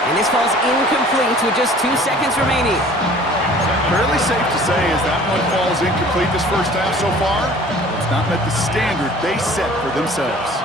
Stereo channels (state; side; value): normal; both; correlation 0.49